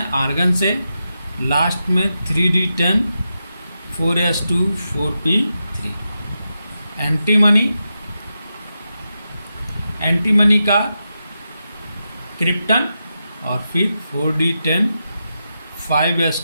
आर्गन से। लास्ट में 3d10 4s2 4p3। एंटीमनी का क्रिप्टन और फिर 4d10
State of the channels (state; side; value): inverted; both; correlation -0.88